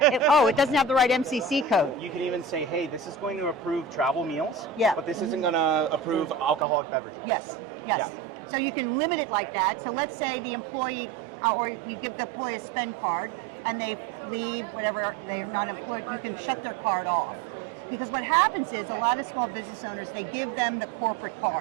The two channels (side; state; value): left; drops out; at 6.7 s